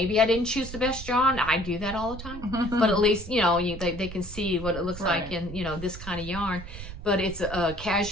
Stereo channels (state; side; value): noise; right; rumble, 11 dB below the sound